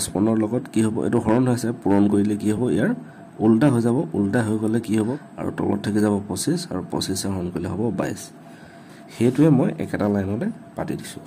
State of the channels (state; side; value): identical; both; correlation 1.00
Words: ৰ লগত কি হ'ব এটো হৰণ হৈছে পূৰণ কৰিলে কি হ'ব ইয়াৰ উল্টা হৈ যাব উল্টা হৈ গলে কি হ'ব আৰু তলত থাকি যাব 25 আৰু 25 হৰণ কৰিলে হ'ব 22 হেতুৱে মই একেটা লাইনতে পাতি দিছো